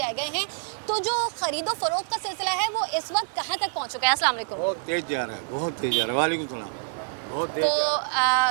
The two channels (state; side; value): silent; left; digital silence